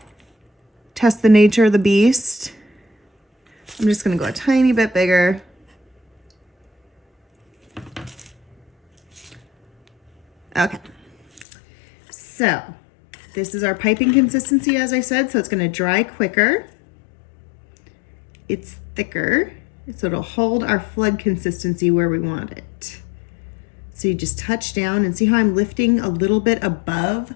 Test the nature of the beast. I'm just gonna go a tiny bit bigger. Okay, so this is our piping consistency, as I said, so it's gonna dry quicker. It's thicker, so it'll hold our flood consistency where we want it. So you just touch down and see how I'm lifting a little bit above,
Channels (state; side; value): drops out; right; at 11.5 s